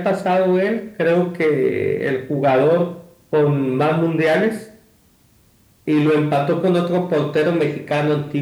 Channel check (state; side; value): identical; both; correlation 1.00